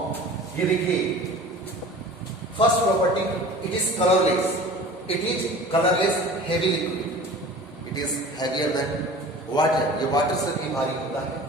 ये देखिए, first property, it is colourless. It is colorless heavy liquid. It is heavier than water. ये water से भी भारी होता है.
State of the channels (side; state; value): both; normal; correlation 0.41